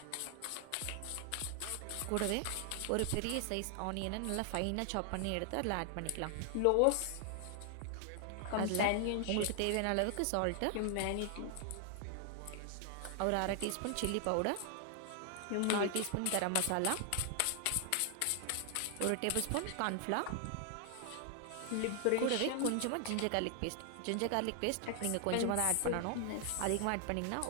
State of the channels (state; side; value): different; both; correlation 0.00